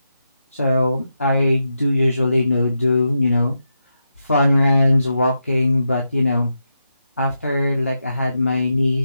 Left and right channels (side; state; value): both; inverted; correlation -0.86